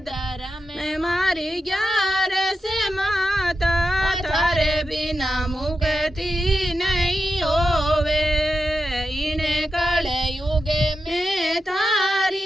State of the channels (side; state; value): both; normal; correlation 0.89